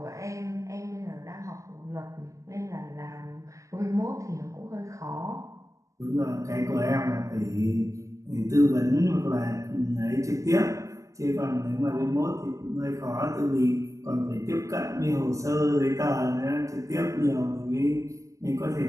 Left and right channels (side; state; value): left; late; 0.15 ms